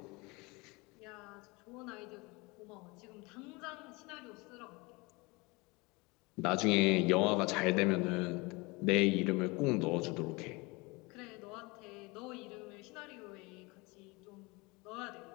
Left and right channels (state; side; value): quieter; right; 25.7 dB